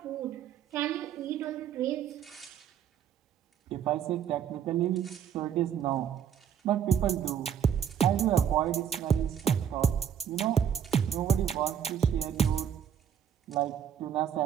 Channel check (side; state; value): left; quieter; 8.7 dB